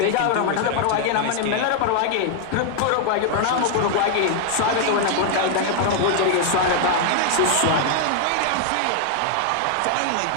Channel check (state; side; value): different; both; correlation 0.00